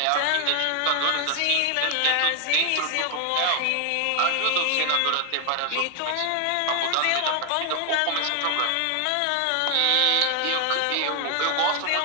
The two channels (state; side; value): different; both; correlation 0.01